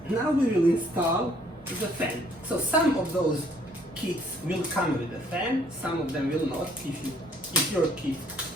Now we will install the fan. So some of those kits will come with a fan, some of them will not. If your kit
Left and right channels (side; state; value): both; normal; correlation 0.63